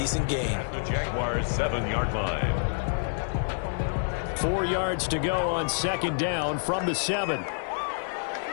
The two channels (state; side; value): silent; right; digital silence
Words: gain. The Jaguars' 7-yard line. 4 yards to go on 2nd down from the 7.